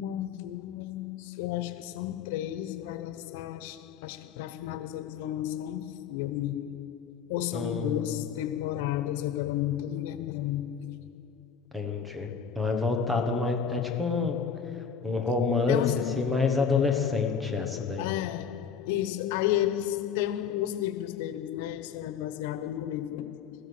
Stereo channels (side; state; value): right; quieter; 6.8 dB